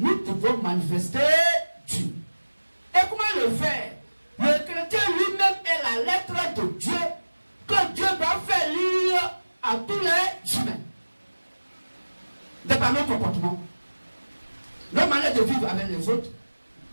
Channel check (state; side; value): inverted; both; correlation -1.00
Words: devons manifester Dieu. Et comment le faire? Le chrétien lui-même est la lettre de Dieu que Dieu va faire lire à tous les humains. De par nos comportements, nos manières de vivre avec les autres,